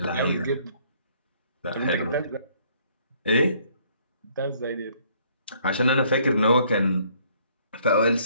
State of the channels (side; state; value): both; inverted; correlation -0.63